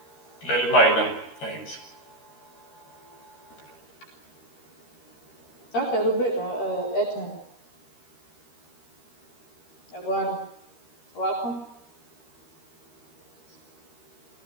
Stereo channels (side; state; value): right; late; 13 ms